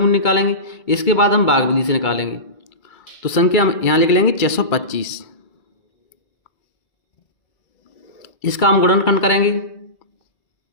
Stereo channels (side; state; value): right; late; 2.3 ms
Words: निकालेंगे, इसके बाद हम भाग विधि से निकालेंगे। तो संख्या हम यहाँ लिख लेंगे 625, इसका हम गुणनखंड करेंगे।